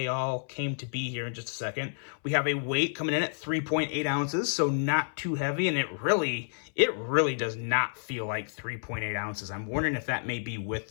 all came to be here in just a second. We have a weight coming in at 3.8 ounces, so not too heavy, and it really does not feel like 3.8 ounces. I'm wondering if that may be with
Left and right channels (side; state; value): right; silent; 57 dB below the other